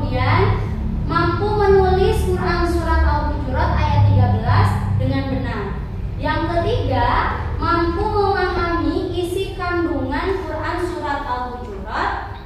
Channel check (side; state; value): both; identical; correlation 1.00